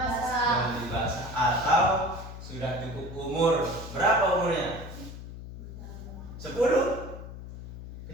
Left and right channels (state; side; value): noise; left; hum, 11 dB below the sound